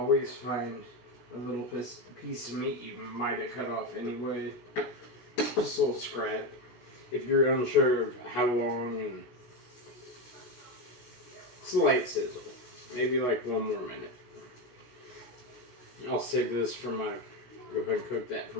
find a little piece of meat you might have cut off anyway. Just a little scrap. If you're unsure of how long, and slight sizzle. Maybe like 1 more minute. I'll save this for go ahead and cook that for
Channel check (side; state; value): right; late; 16 ms